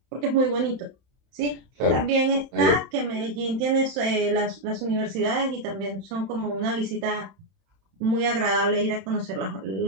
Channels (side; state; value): left; late; 31 ms